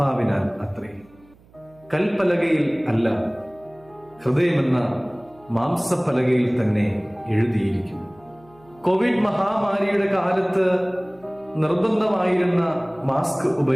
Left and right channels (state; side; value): noise; right; hum, 28 dB below the sound